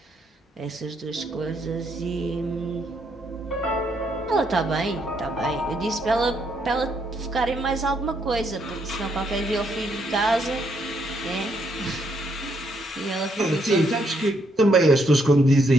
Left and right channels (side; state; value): both; normal; correlation 0.74